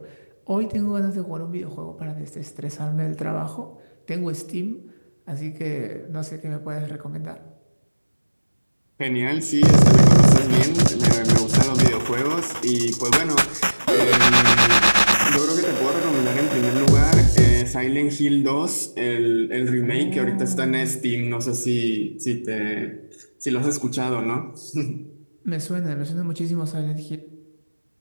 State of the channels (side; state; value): both; inverted; correlation -1.00